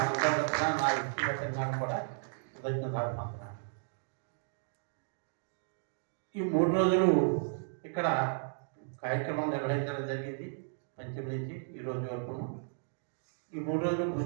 నా వ్యక్తిగతంగా కూడా కృతజ్ఞత అభివందనాలు. ఈ 3 రోజులు ఇక్కడ కార్యక్రమం నిర్వహించడం జరిగింది. పంచమి నుంచి ఈ రోజు వరకు ఈ 3 రోజులు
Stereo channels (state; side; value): silent; left; digital silence